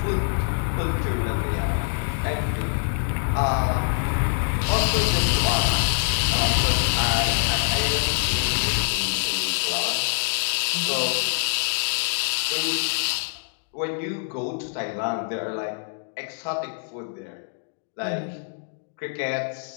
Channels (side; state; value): right; silent; digital silence